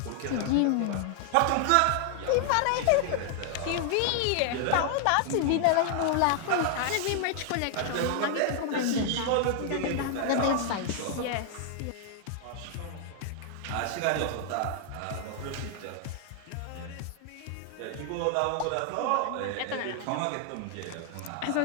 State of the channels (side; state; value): both; different; correlation 0.00